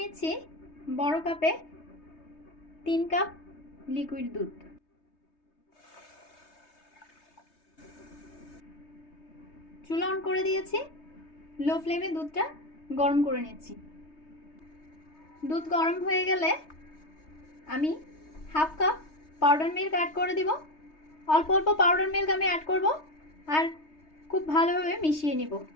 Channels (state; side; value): late; right; 3.2 ms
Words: নিচ্ছি বড় কাপে 3 কাপ লিকুইড দুধ। চুলা অন করে দিয়েছি, লো ফ্লেমে দুধটা গরম করে নিচ্ছি। দুধ গরম হয়ে গেলে আমি half cup powder milk add করে দিব। অল্প অল্প পাউডার মিল্ক আমি অ্যাড করব আর খুব ভালোভাবে মিশিয়ে নিব।